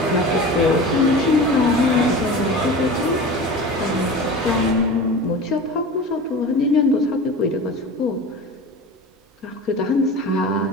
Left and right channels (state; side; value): normal; both; correlation 0.33